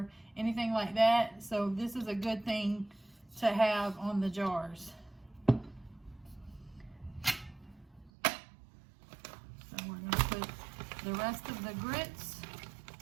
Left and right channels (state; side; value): drops out; left; at 8.1 s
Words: anything like that. So this is a good thing to have on the jars. So we're going to put the rest of the grits